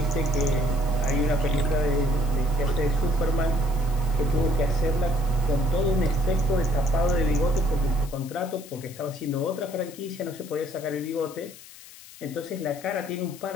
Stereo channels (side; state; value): left; noise; hiss, 19 dB below the sound